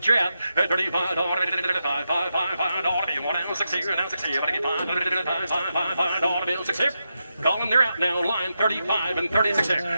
you out. At $35, $5 deal now, 6 here, now 6 here. $500 deal 6 here. Calling, they're out now. Line 35 and 36 here.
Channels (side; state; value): both; inverted; correlation -0.87